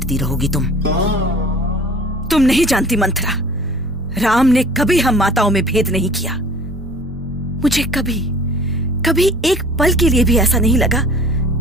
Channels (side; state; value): both; normal; correlation 0.48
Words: रहोगी तुम। तुम नहीं जानती मंथरा, राम ने कभी हम माताओं में भेद नहीं किया। मुझे कभी कभी एक पल के लिए भी ऐसा नहीं लगा